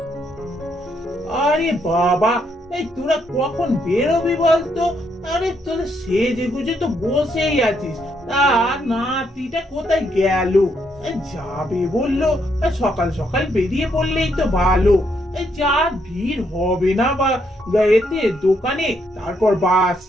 আরে বাবা, এই তোরা কখন বেরোবি বলতো? আরে তোরা সেজে গুজে তো বসেই আছিস। আর নাতিটা কোথায় গেল? যাবে বললো, সকাল সকাল বেরিয়ে পড়লেই তো ভালো। যা ভিড় হবে না বা এতে দোকানে, তারপর বাস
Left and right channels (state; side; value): normal; both; correlation 0.75